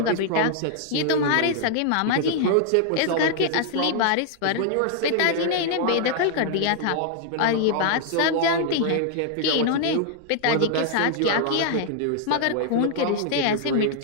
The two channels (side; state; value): both; different; correlation 0.00